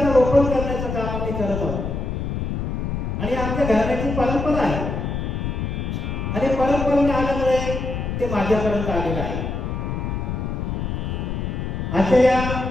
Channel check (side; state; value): left; noise; rumble, 3 dB below the sound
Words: रोपण करण्याचं काम आम्ही करत आहोत आणि आमच्या घराण्याची परंपरा आहे आणि परंपरेने आल्यामुळे ते माझ्यापर्यंत आलेलं आहे। आजच्या या